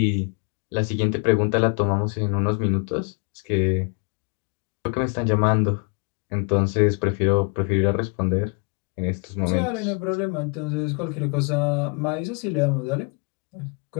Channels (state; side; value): quieter; right; 35.1 dB